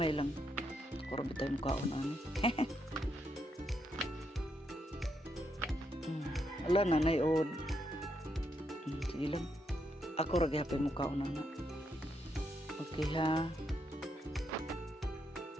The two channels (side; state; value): both; normal; correlation 0.79